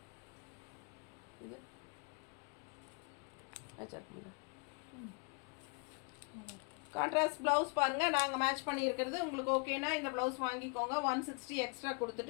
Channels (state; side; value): quieter; right; 33.5 dB